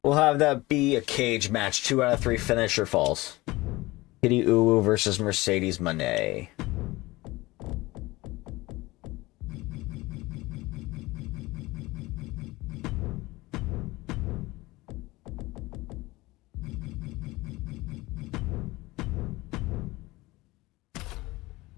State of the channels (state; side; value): quieter; right; 20.4 dB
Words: We'll have that be a cage match. 2 out of 3 finisher falls. Kitty Uwu versus Mercedes Moné.